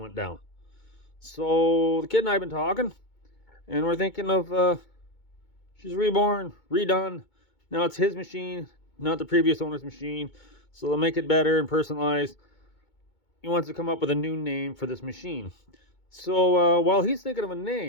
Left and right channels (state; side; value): late; right; 2.2 ms